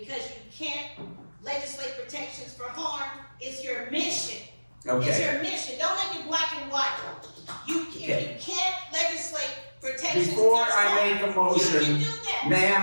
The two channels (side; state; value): both; inverted; correlation -1.00